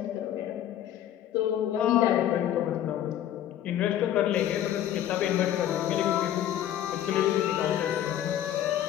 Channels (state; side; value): quieter; right; 11.4 dB